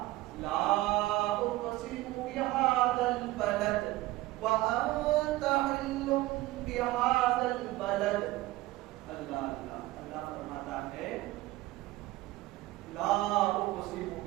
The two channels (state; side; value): quieter; left; 18.3 dB